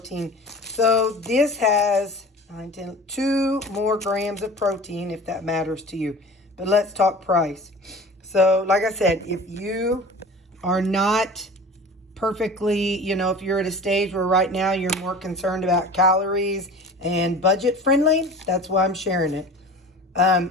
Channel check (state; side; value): normal; both; correlation 0.39